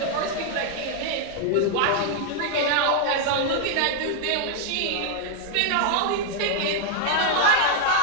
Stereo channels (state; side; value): different; both; correlation 0.00